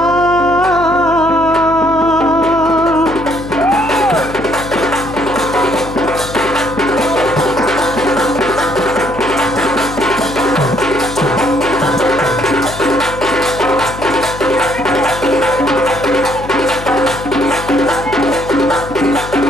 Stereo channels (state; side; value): noise; left; hum, 12 dB below the sound